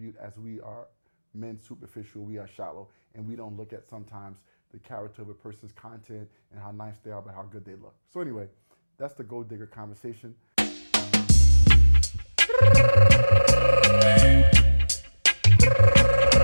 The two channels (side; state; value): both; inverted; correlation -1.00